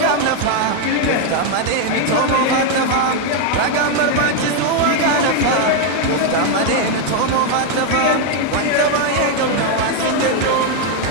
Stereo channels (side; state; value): both; different; correlation 0.01